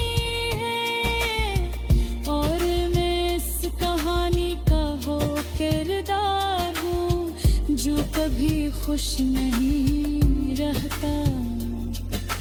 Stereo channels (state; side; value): identical; both; correlation 1.00